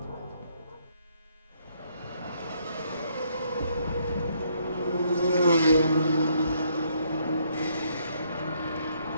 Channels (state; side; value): inverted; both; correlation -0.70